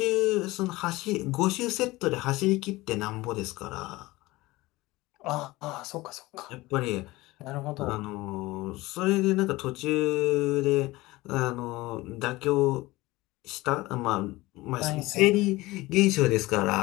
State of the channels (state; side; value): quieter; right; 19.9 dB